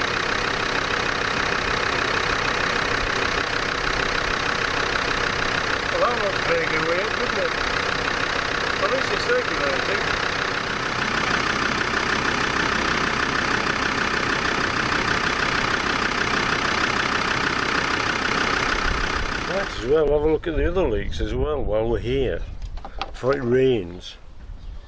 Well, that looks very good way up, doesn't it? At least it's circulating. Might as well have a look at the other leaks as well while we're here, before it rains.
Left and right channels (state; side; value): identical; both; correlation 1.00